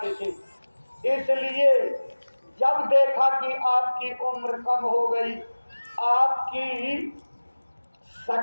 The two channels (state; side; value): inverted; both; correlation -1.00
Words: थे। इसलिए जब देखा कि आपकी उम्र कम हो गई, आपकी